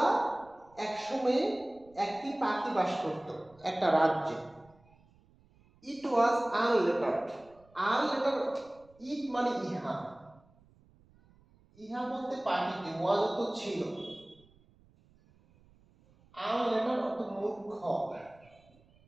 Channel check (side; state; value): right; noise; rumble, 29 dB below the sound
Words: এক সময়ে একটি পাখি বাস করত একটা রাজ্যে। ইট ওয়াজ আনলেটার্ড। আনলেটার্ড, ইট মানে ইহা, ইহা বলতে পাখিটি, ওয়াজ তো ছিল। আনলেটার্ড অর্থ মূর্খ।